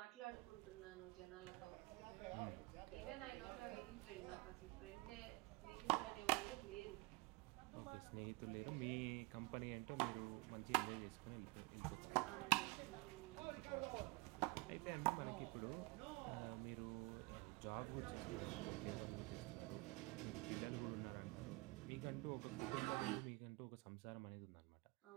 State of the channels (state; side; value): quieter; left; 24.1 dB